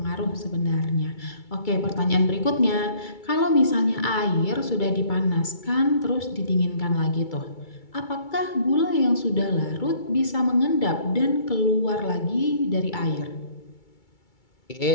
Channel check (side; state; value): right; late; 2.3 ms